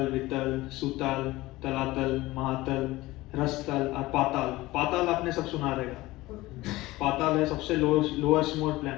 Vitala, सुतल, तलातल, महातल, रसतल और पाताल। पाताल आपने सब सुना रहेगा। पाताल है सबसे लोएस्ट मोस्ट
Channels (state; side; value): quieter; right; 18.9 dB